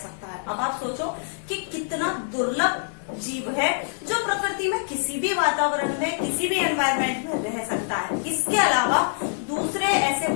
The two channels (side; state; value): right; silent; digital silence